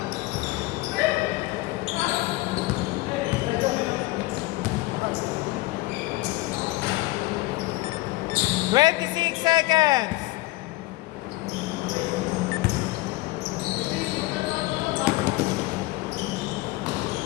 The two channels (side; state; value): right; quieter; 20.2 dB